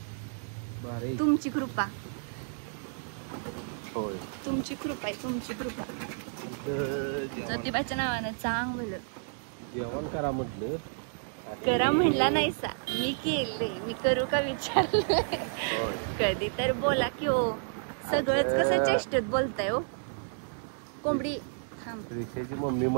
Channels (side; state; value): left; silent; digital silence